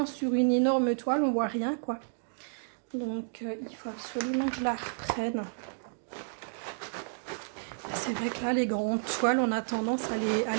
sur une énorme toile, on voit rien quoi. Donc il faut absolument que je la reprenne. C'est vrai que là les grandes toiles on a tendance à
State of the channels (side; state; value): left; silent; digital silence